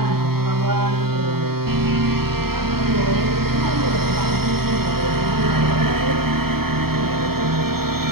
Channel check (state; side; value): late; left; 0.95 ms